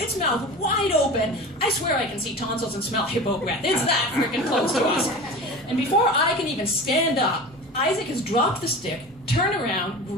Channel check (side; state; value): both; normal; correlation 0.34